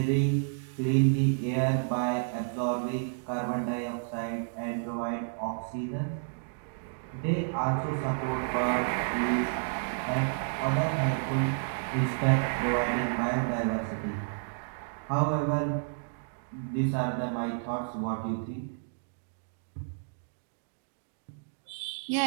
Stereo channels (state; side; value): silent; left; digital silence